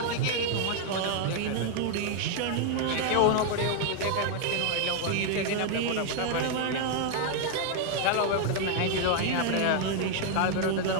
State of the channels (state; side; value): different; both; correlation 0.00